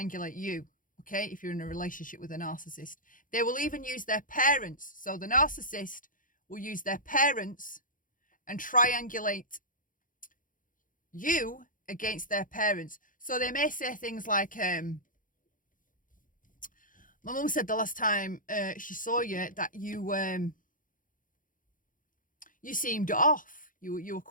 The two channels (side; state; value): right; late; 0.39 ms